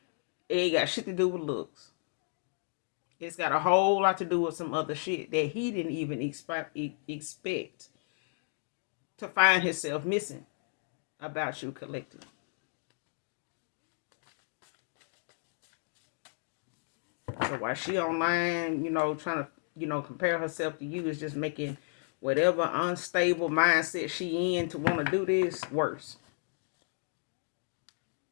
it ain't got shit to do with looks. It's got a whole lot to do with some other shit that he didn't even expect to find himself missing about you, collective. So while she online, trying to, compare herself to you, is just making whatever unstable mindset she in to want to do this worse.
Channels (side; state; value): right; silent; digital silence